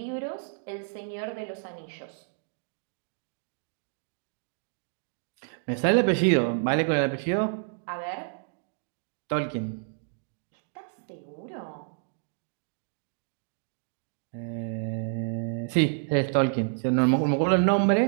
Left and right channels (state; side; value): silent; left; digital silence